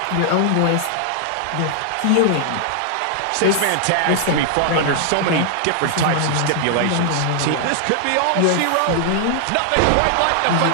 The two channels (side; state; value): both; different; correlation 0.00